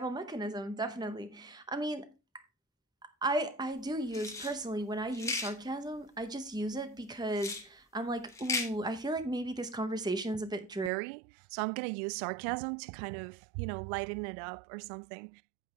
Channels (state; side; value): drops out; left; at 10.9 s